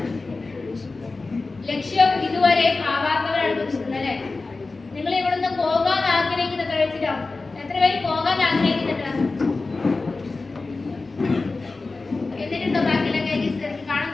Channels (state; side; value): quieter; right; 3.6 dB